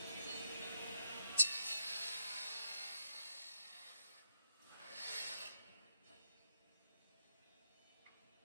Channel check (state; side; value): inverted; both; correlation -0.77